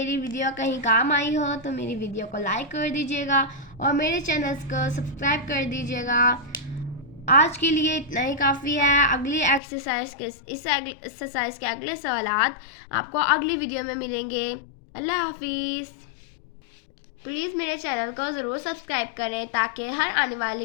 वीडियो कहीं काम आई हो तो मेरी वीडियो को लाइक कर दीजिएगा और मेरे चैनल्स को सब्सक्राइब कर दीजिएगा। आज के लिए इतना ही काफ़ी है। अगली एक्सरसाइज के इस एक्सरसाइज के अगले सवालात आपको अगली वीडियो में मिलेंगे। अल्लाह हाफिज़। प्लीज़ मेरे चैनल को ज़रूर सब्सक्राइब करें ताकि हर आने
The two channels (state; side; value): drops out; right; at 9.6 s